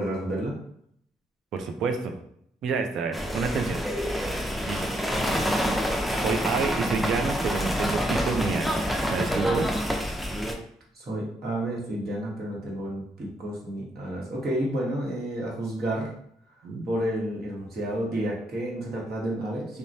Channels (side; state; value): both; normal; correlation 0.76